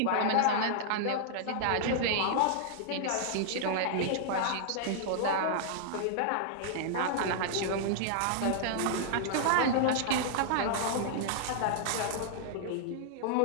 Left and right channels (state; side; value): different; both; correlation -0.01